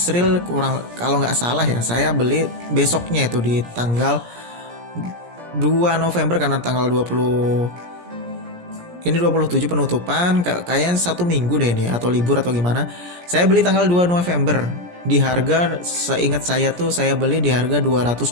kurang kalau nggak salah ya, saya beli besoknya itu di tanggal 2 November karena tanggal 20 ini 27 penutupan, kayaknya 1 minggu deh ini atau libur atau gimana. Saya beli tanggal 2 November di harga, seingat saya tuh saya beli di harga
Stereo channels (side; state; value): left; late; 17 ms